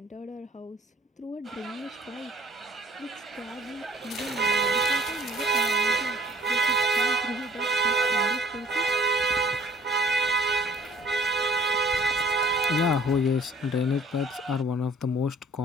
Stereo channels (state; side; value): normal; both; correlation 0.55